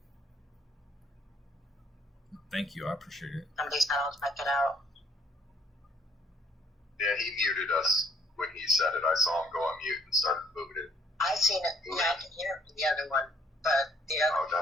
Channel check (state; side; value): normal; both; correlation 0.64